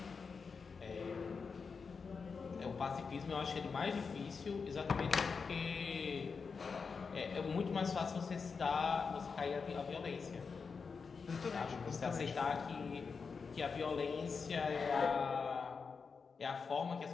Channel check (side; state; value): right; quieter; 5.2 dB